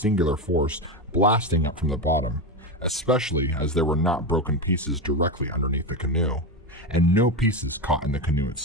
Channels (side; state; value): both; normal; correlation 0.15